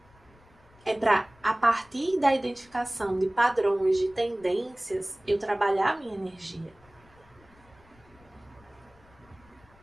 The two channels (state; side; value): noise; left; rumble, 28 dB below the sound